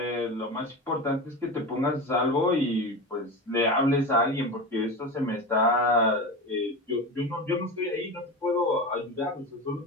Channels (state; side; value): normal; both; correlation 0.25